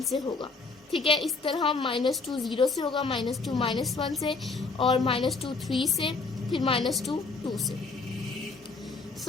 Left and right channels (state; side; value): quieter; right; 4.0 dB